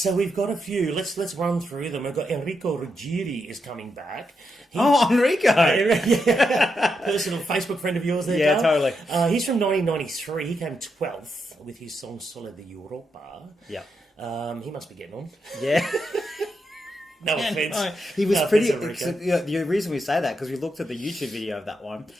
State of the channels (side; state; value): both; normal; correlation 0.83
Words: we've got a few. Let's run through them. We've got Enrico Ruggieri is coming back. Enrico! Personal Facebook friend of yours there, Yeah, Carl. totally. He's from 1993. He came 12th with his song Sole di Europa. Yeah. He must be getting on. Yeah. No offense. No, he was No pretty. offense, Yeah, the reason we say that because we looked at the YouTube video of that one.